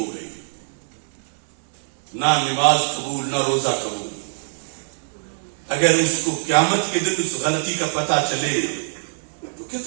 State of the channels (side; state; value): left; silent; 64 dB below the other